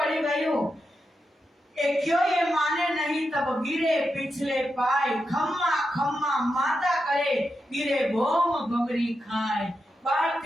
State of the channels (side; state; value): both; normal; correlation 0.87